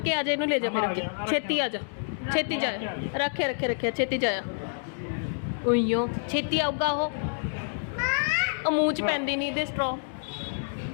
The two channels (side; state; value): right; silent; 59 dB below the other